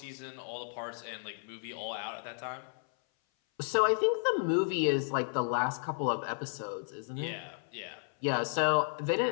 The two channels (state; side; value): silent; right; 56 dB below the other